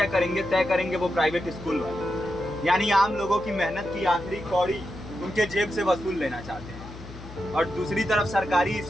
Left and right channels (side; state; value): left; noise; hum, 14 dB below the sound